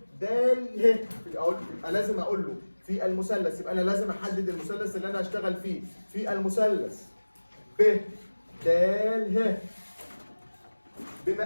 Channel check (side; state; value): both; inverted; correlation -1.00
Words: د ه، يبقى لازم اقول له في المثلث، يبقى انا لازم احدد المثلث اللي انا هشتغل فيه. في المثلث ب د ه،